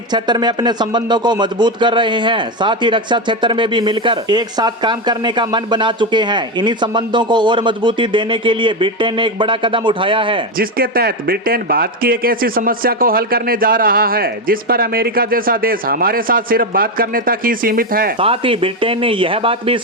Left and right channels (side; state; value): both; normal; correlation 0.11